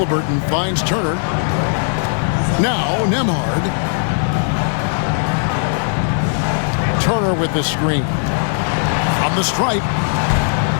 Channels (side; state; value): right; silent; 66 dB below the other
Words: finds Turner. Now Nembhard. Turner with the screen. From the stripe.